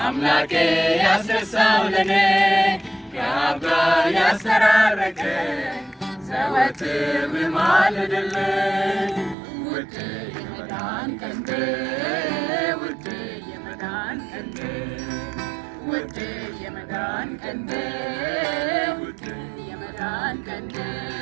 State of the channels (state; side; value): drops out; left; at 9.3 s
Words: አምላኬ ያስረሳው ለኔ ከአብ ጋር ያስተራረቀኝ ዘወትር ብማልድልኝ ውድ የመዳን ቀንዴ ውድ የመዳን ቀንዴ ውድ የመዳን ቀንዴ ውድ የመዳን ቀንዴ